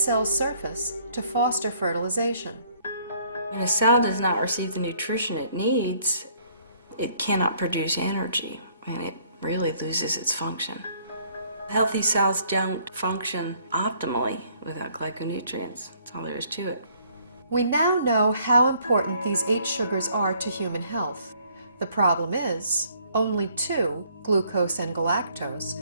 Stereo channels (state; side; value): inverted; both; correlation -0.63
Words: surface to foster fertilization. When a cell does not receive the nutrition it needs, it cannot produce energy, and it really loses its function. Healthy cells don't function optimally without glyconutrients. That's all there is to it. We now know how important these 8 sugars are to human health. The problem is, only 2, glucose and galactose,